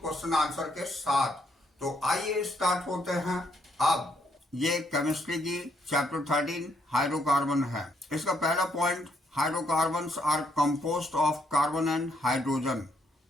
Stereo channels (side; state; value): both; normal; correlation 0.73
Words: क्वेश्चन आंसर के साथ। तो आइए स्टार्ट होते हैं। अब ये केमिस्ट्री की चैप्टर 13 हाइड्रोकार्बन है। इसका पहला point, hydrocarbons are composed of carbon and hydrogen,